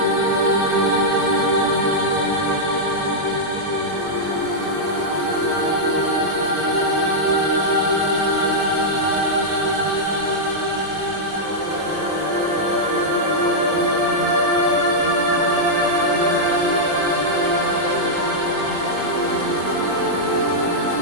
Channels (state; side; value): late; left; 20 ms